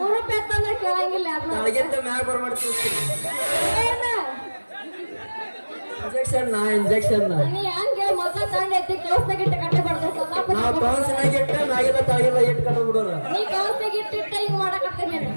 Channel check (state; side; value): inverted; both; correlation -1.00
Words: ರೂಪಾಯಿ ಅಂದ್ರೆ ಕೇಳಂಗಿಲ್ಲ ಯಾರು ತಳಗಿಂದ ಮ್ಯಾಗ ಬರ ಮಾಡ್ತೀನಿ ಏನ ಇಂಜೆಕ್ಷನ್ ನೀ ಹಂಗೆ ಮೊದಲ ತಂಡ ಎತ್ತಿ ಕೌಸ್ತಾಗಿಟ್ಟು ಕಟ್ಟೆ ಬರ್ತದೆ ನಾವು ಕೌನ್ಸಿನಾಗ ಇಟ್ಟ ಮ್ಯಾಗಿಲ್ಲ ತಳಗಿಲ್ಲ ಇಟ್ಟು ಕಟ್ಟ ಬಿಡೋರು ನೀ ಕೌಸ್ತಾಗಿಟ್ಟಿಟ್ಟ ಹಿಂಗ್ ಮಾಡಕತ್ತೀನಿ ನೀನು